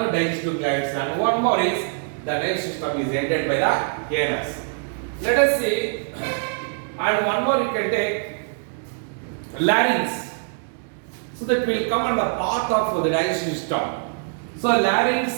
digestive glands. And one more is the digestive system is ಎಂಟೆಡ್ by the anus. Let us see, and one more you can take larynx. So that will come on the path of the digestive system. So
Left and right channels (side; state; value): left; silent; 63 dB below the other